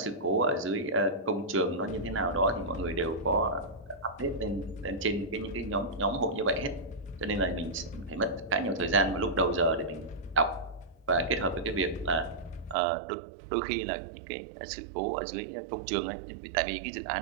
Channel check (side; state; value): left; drops out; at 12.8 s